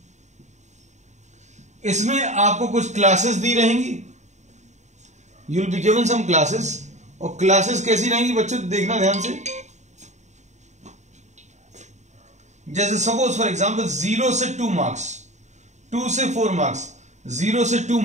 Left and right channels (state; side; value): late; left; 0.34 ms